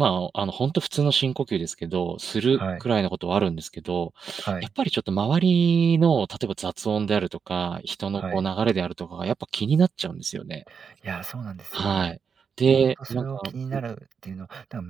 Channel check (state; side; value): quieter; left; 6.3 dB